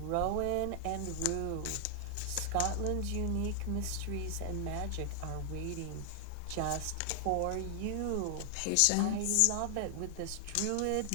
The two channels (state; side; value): different; both; correlation 0.00